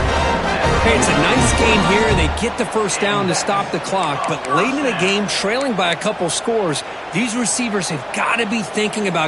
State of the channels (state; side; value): identical; both; correlation 1.00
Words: Hey, it's a nice gain here. They get the 1st down to stop the clock, but late in the game, trailing by a couple scores, these receivers have got to be thinking